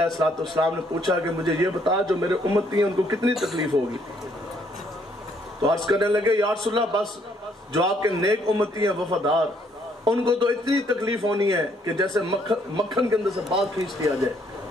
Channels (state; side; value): normal; both; correlation 0.68